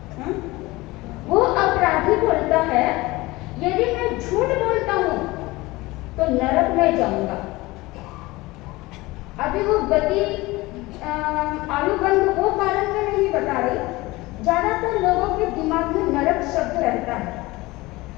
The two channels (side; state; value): right; quieter; 20.9 dB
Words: वो अपराधी बोलता है यदि मैं झूठ बोलता हूं तो नरक में जाऊंगा। अभी वो गति आयुबंध वो कारण में नहीं बता रही, ज्यादातर लोगों के दिमाग में नरक शब्द रहता है।